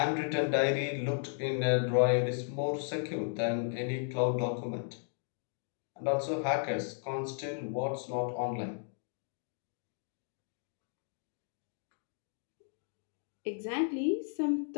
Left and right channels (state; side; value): silent; right; digital silence